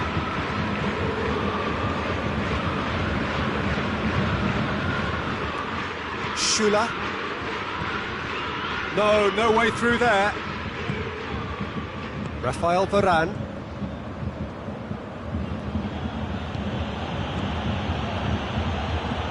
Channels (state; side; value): identical; both; correlation 1.00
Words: Schüller. No way through there. Rafael Varane.